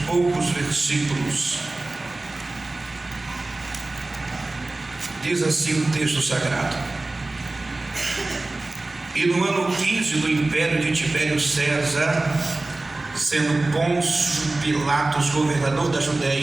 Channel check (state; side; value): quieter; left; 3.0 dB